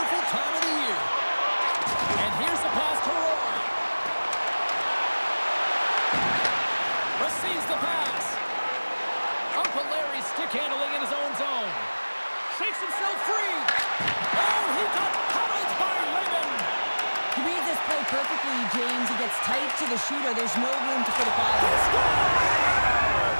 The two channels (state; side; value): inverted; both; correlation -1.00